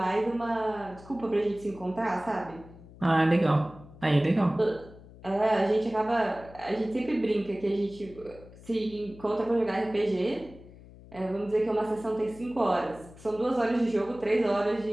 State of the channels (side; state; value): left; noise; hum, 20 dB below the sound